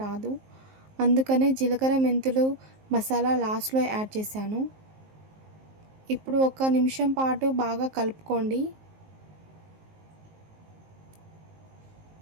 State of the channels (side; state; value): left; late; 19 ms